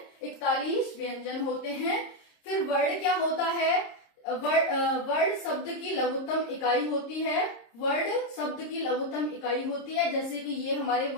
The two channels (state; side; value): late; right; 26 ms